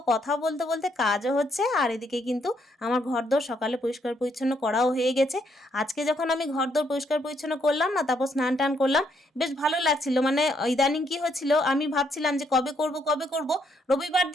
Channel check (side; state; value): both; normal; correlation 0.73